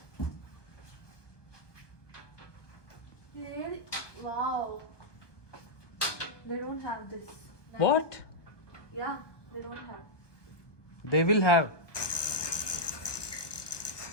Wow. They don't have this. What? Yeah, they don't have. They will have.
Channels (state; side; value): late; right; 1.2 ms